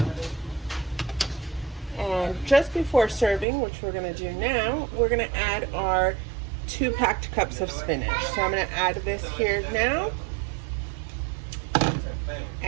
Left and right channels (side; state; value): left; drops out; at 3.5 s